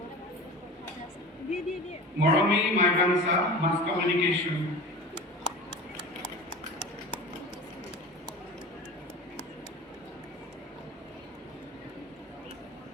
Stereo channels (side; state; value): both; normal; correlation 0.34